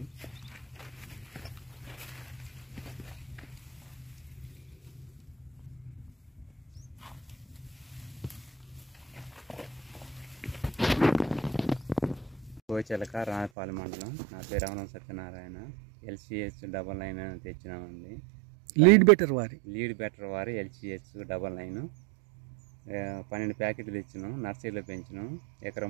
కోచెలక రాయపాలెం మండలం. నా పేరు రమణ సత్యనారాయణ. LCH99 తెచ్చినామండి. లీడ్ బెటర్ వారి LCH99 12 ప్యాకెట్లు తెచ్చినాం. నర్సరీలో పెంచినాం. ఎకరం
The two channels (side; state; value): left; drops out; at 13.5 s